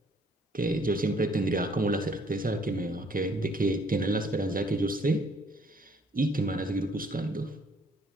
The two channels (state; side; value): normal; both; correlation 0.63